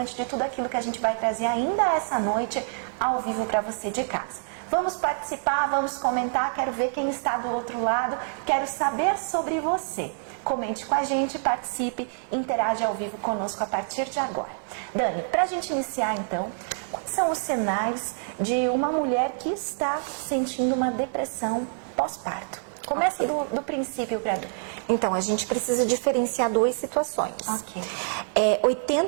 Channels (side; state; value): left; silent; digital silence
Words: de tudo aquilo que a gente vai trazer ainda essa noite ao vivo para você de casa. Vamos participar, vamos comentar, quero ver quem está do outro lado, quero saber sobre você. Comente com a gente, participe, interage ao vivo conosco a partir de agora. Dani, para a gente iniciar então, quais são os sinais de uma mulher que está sentindo uma depressão pós-parto? Começa do princípio para Dani. Então, a gente precisa diferenciar duas situações. Ok.